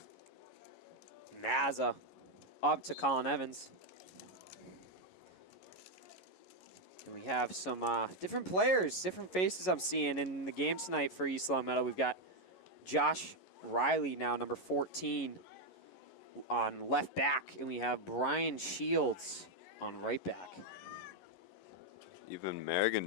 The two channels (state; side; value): late; right; 11 ms